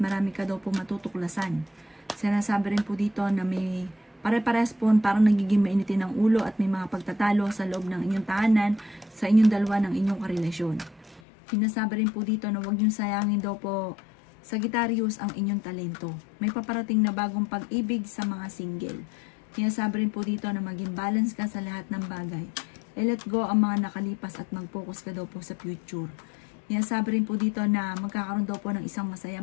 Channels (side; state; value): right; drops out; at 11.2 s